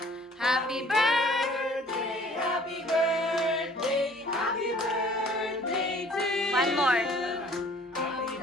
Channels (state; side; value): normal; both; correlation 0.54